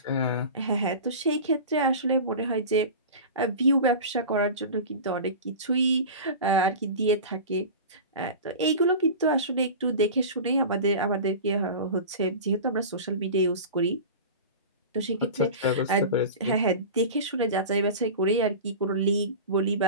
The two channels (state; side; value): inverted; both; correlation -0.32